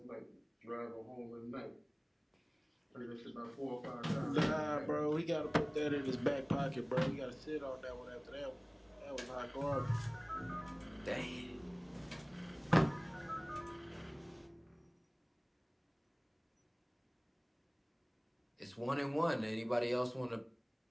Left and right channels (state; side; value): identical; both; correlation 1.00